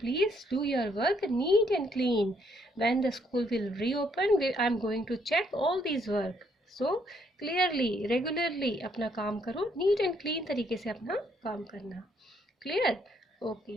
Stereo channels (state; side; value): normal; both; correlation 0.71